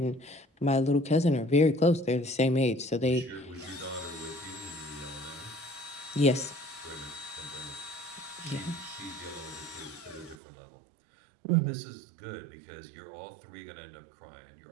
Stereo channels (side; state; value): left; drops out; at 10.4 s